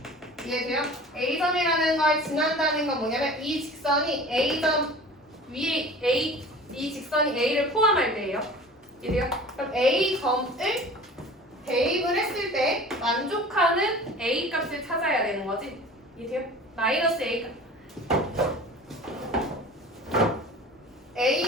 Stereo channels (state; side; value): normal; both; correlation 0.41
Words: 이해돼요? a점이라는 걸 지난다는 건 뭐냐면 이 직선이 a점 위에 이 직선이 a를 포함할 때예요. 이해돼요? 그럼 a점을 대입을 했을 때 만족하는 a 값을 찾아야 되는 거지. 이해돼요? 마이너스 a 값.